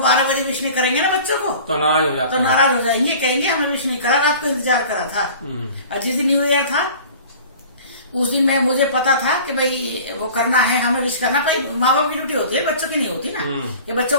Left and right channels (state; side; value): inverted; both; correlation -0.43